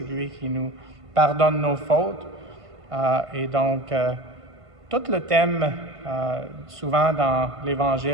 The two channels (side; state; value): left; late; 1.5 ms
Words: lui qui nous pardonne nos fautes. Et donc, tout le thème, souvent dans